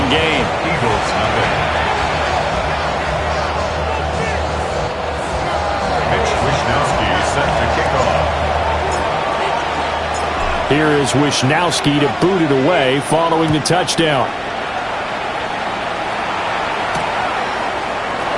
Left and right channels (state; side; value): identical; both; correlation 1.00